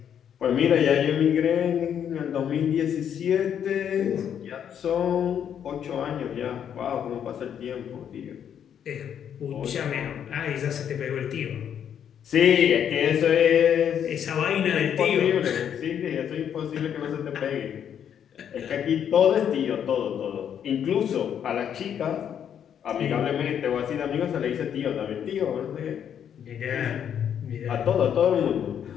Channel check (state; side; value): quieter; right; 8.8 dB